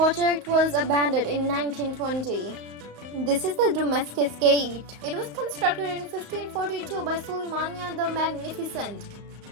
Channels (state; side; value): late; left; 35 ms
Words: was abandoned in 1920. This is the Damascus Gate. It was constructed in 1542 by Suleymania the Magnificent.